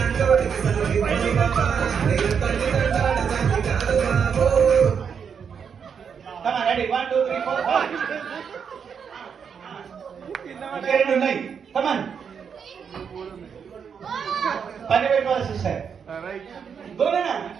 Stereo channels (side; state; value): left; quieter; 6.9 dB